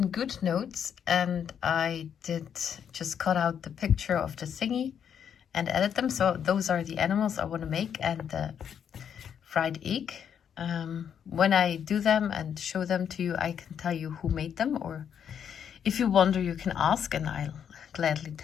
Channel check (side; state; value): right; quieter; 8.2 dB